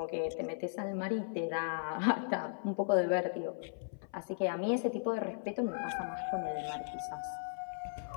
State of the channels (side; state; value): right; silent; 53 dB below the other